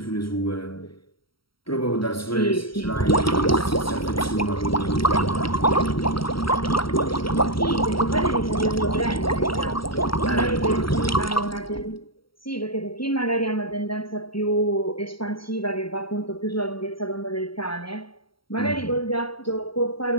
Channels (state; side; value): late; right; 0.74 ms